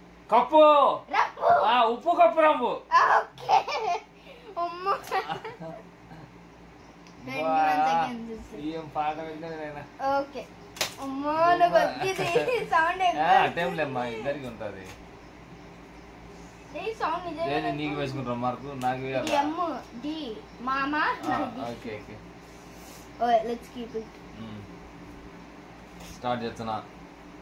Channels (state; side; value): identical; both; correlation 1.00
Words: కప్పు రంబు. ఉప్పు కప్పు రంబు. ఓకే అమ్మా ఏం పాట విన్నా. ఓకే అమ్మా నాకు వచ్చింది సౌండ్. టైంలేమ్మా ఇద్దరికి ఉంటుంది. సౌండ్ నిజంగా నీకు వేసుకుంటాం మార్కు నాకు డి మామా. Okay okay let's keep it. Start చేస్తున్నా